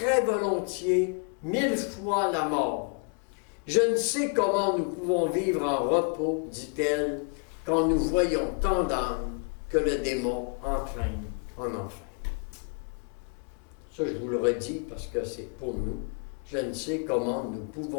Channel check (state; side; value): quieter; right; 37.8 dB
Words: volontiers 1000 fois la mort. Je ne sais comment nous pouvons vivre en repos, dit-elle, quand nous voyons tant d'âmes que le démon entraîne en enfer. Ça, je vous le redis parce que c'est pour nous. Je ne sais comment nous